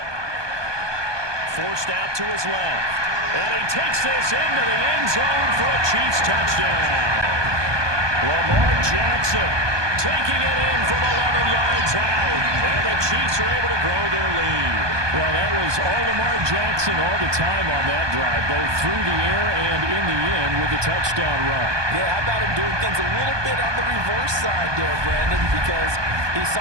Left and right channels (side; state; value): left; late; 1.2 ms